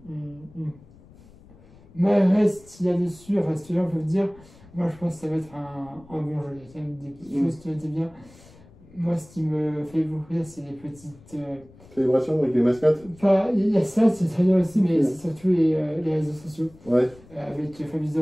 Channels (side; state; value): left; noise; rumble, 24 dB below the sound